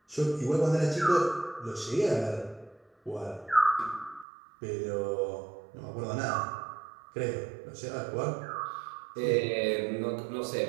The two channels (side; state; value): left; drops out; at 4.2 s